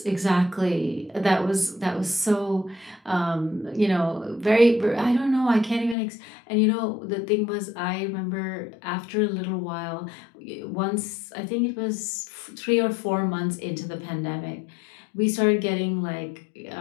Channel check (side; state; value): right; drops out; at 6.0 s